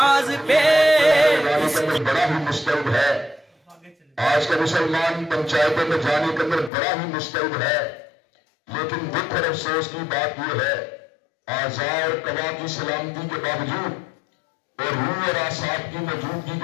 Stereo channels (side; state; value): right; drops out; at 6.7 s